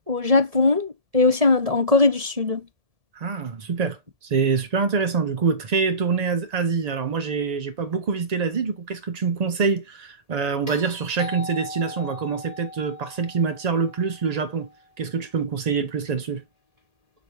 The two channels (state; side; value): late; left; 1.9 ms